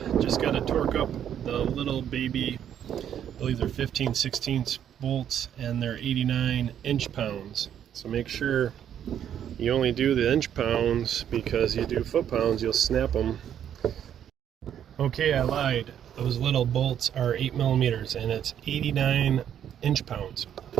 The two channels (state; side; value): quieter; left; 9.7 dB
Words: Just got to torque up the little baby, I believe they're 15/16 bolts, and they're 89 inch-pounds. So make sure you only do the inch-pounds, because you do foot-pounds, you'll snap them. Okay, I lied. Those little bolts are 8mm, and it's 89 inch-pounds.